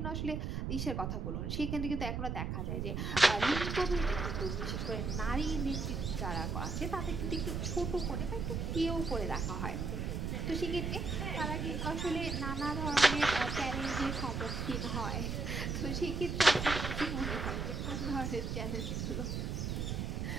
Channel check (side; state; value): right; noise; rumble, 2 dB below the sound